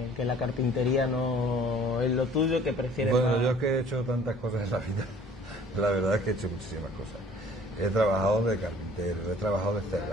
la carpintería no es lo tuyo, que prefieres Bueno, más... yo es que he hecho tantas cosas en la vida, la verdad es que he hecho muchísimas cosas. He trabajado de carpintero, he trabajado de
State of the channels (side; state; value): both; normal; correlation 0.53